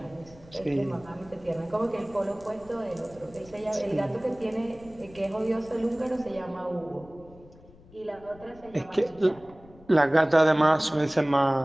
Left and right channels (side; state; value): left; noise; rumble, 23 dB below the sound